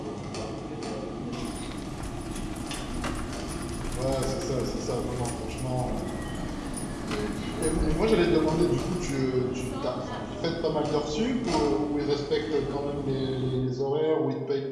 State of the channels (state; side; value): identical; both; correlation 1.00